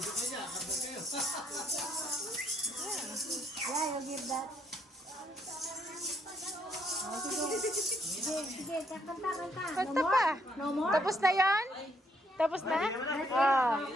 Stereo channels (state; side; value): normal; both; correlation 0.72